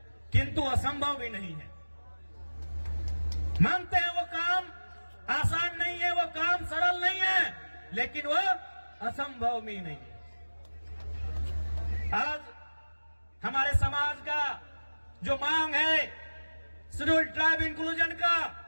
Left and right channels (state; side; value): inverted; both; correlation -1.00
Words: किंतु असंभव भी नहीं है। मानते हैं वो काम आसान नहीं है, वो काम सरल नहीं है, लेकिन वो असंभव भी नहीं है। आज हमारे समाज का जो मांग है शेड्यूल ट्राइब इंक्लूजन का,